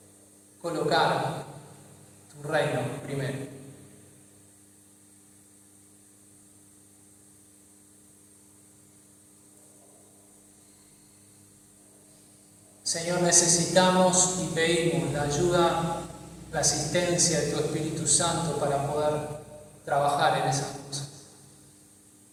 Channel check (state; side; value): identical; both; correlation 1.00